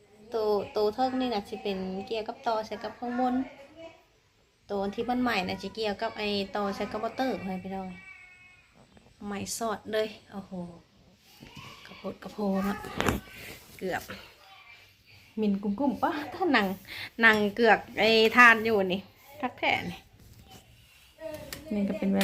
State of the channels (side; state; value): both; identical; correlation 1.00